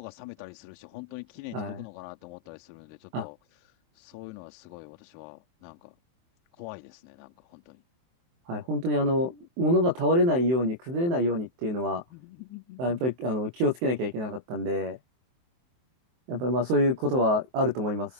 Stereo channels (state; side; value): late; left; 23 ms